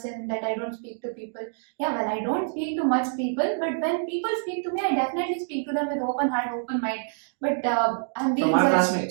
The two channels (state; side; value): silent; left; digital silence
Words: that I don't speak to people. Yeah, well, I don't speak to much people, but when people speak to me, I definitely speak to them with open heart, open mind. But I'm being From our judged.